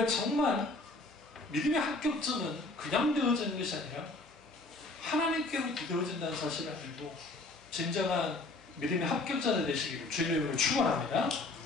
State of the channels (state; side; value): quieter; right; 3.1 dB